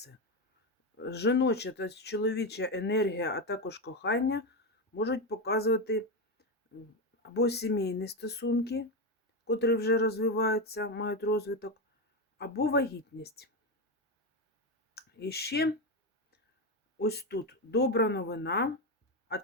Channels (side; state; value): both; normal; correlation 0.12